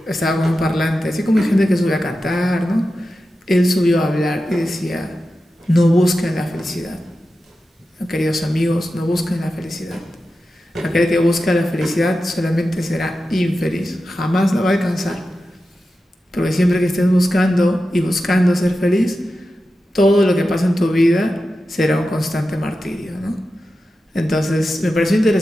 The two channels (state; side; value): normal; both; correlation 0.92